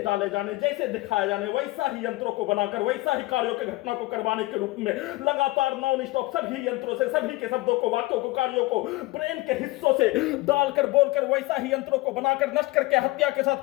जाने, जैसे दिखाया जाने वैसा ही यंत्रों को बनाकर वैसा ही कार्यों के घटना को करवाने के रूप में लगातार नॉन स्टॉप सभी यंत्रों से सभी के शब्दों को, वाक्यों को, कार्यों को ब्रेन के हिस्सों से डालकर बोलकर वैसा ही यंत्रों को बनाकर नष्ट करके हत्या के साथ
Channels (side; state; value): right; quieter; 20.4 dB